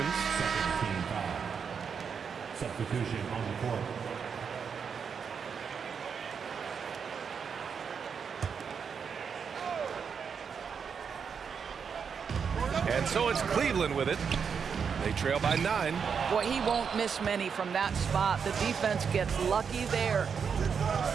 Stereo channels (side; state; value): left; quieter; 6.5 dB